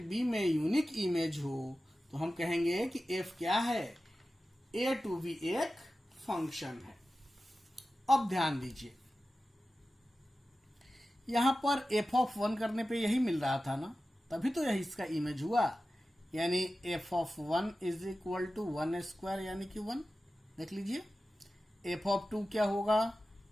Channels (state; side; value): normal; both; correlation 0.94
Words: B में यूनिक इमेज हो तो हम कहेंगे कि F क्या है, A to B एक फंक्शन है। अब ध्यान दीजिए यहां पर f ऑफ 1 करने पे यही मिल रहा था ना, तभी तो यही इसका इमेज हुआ, यानी f of 1 is equal to 1 square यानी कि 1। देख लीजिए f ऑफ 2 क्या होगा